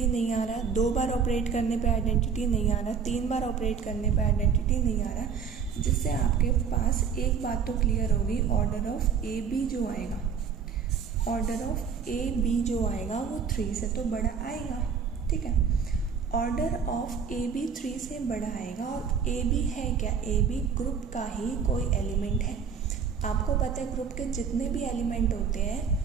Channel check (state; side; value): quieter; left; 6.5 dB